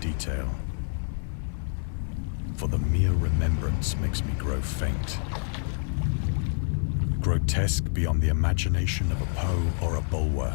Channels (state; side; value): silent; right; 56 dB below the other